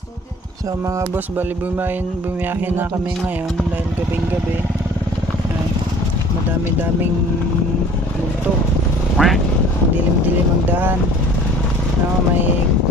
So mga boss, bali bumiyahin na kami ngayon dahil gabing-gabi. Madami-daming multo. Dilim-dilim ang daan. No, may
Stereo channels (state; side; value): normal; both; correlation 0.49